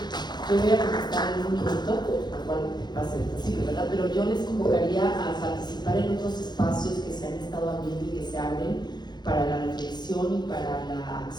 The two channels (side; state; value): right; late; 0.21 ms